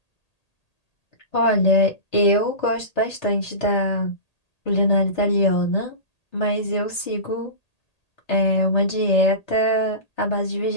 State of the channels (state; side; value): late; right; 1.8 ms